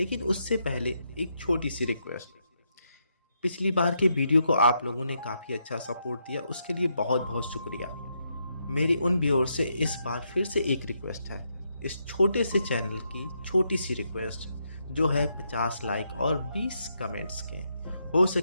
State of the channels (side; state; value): both; inverted; correlation -0.80